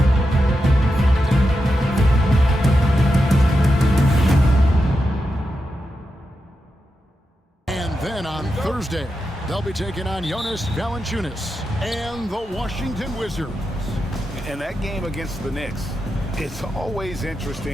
Then on Thursday, they'll be taking on Jonas Valanciunas and the Washington Wizards. And that game against the Knicks, it's always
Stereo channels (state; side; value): normal; both; correlation 0.88